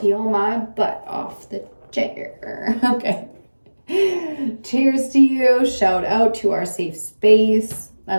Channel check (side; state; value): both; inverted; correlation -1.00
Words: my butt off the chair. Okay. Cheers to you. Shout out to our safe space. I